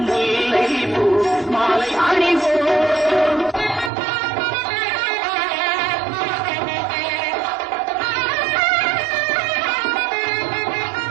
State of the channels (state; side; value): drops out; left; at 3.9 s